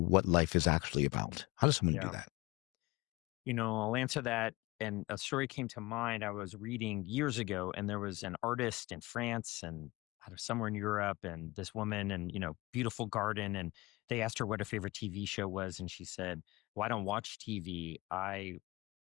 life is actually about? How does someone do that? I'll answer that. And a story came to mind. I was reading years ago, and there was an artist in France and somewhere in Europe, and this woman, and beautiful garden, and they asked her what her favorite TV show was, and she said, well, I don't watch TV. I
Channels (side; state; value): right; quieter; 22.1 dB